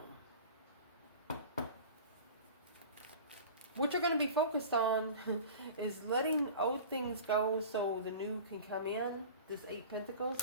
What you're going to be focused on is letting old things go so the new can come in. This 8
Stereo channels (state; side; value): inverted; both; correlation -0.38